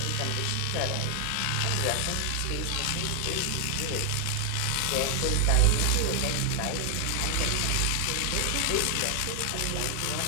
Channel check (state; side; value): different; both; correlation 0.00